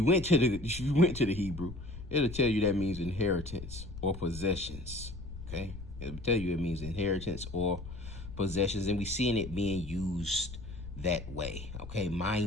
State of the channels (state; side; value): noise; left; rumble, 11 dB below the sound